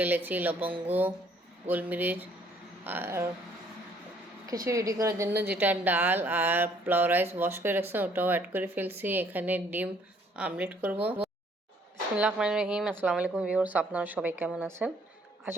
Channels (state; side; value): normal; both; correlation 0.63